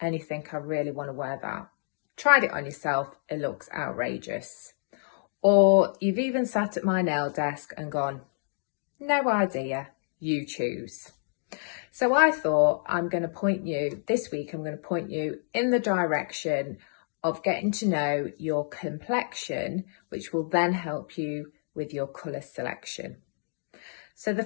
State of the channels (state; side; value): silent; right; digital silence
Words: you think, I really want to wear that? Tried it on yourself, it looks outrageous. Or you've even sat at my nail desk and gone, no idea, you choose. So I thought this week I'm going to point you in the direction of getting to know your complexion, which will then help you with your colour selection. So the